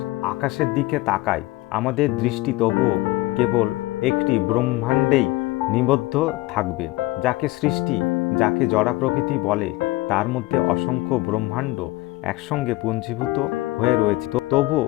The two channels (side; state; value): right; quieter; 19.6 dB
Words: আকাশের দিকে তাকাই, আমাদের দৃষ্টি তবুও কেবল একটি ব্রহ্মাণ্ডেই নিবদ্ধ থাকবে। যাকে সৃষ্টি, যাকে জড়া প্রকৃতি বলে, তার মধ্যে অসংখ্য ব্রহ্মাণ্ড একসঙ্গে পুঞ্জীভূত হয়ে রয়েছে। তবুও